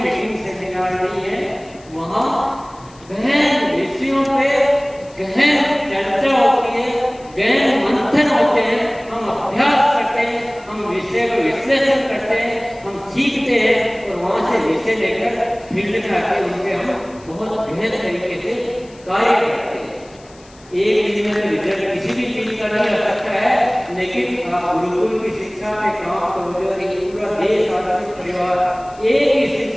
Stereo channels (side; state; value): left; noise; hiss, 26 dB below the sound